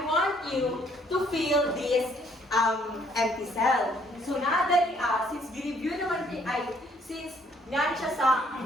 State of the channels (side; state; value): both; normal; correlation 0.64